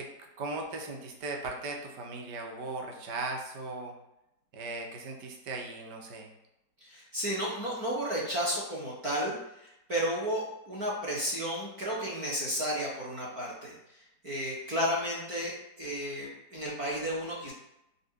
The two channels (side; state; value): left; late; 4.4 ms